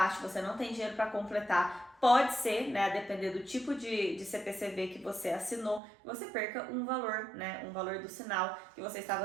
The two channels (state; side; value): drops out; left; at 5.8 s